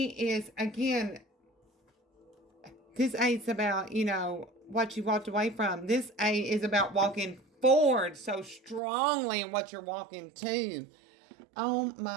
is again. This 8's about, what you walked away from. This 8 is about walking forward so strongly in what you're walking to. Oh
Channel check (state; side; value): drops out; left; at 8.8 s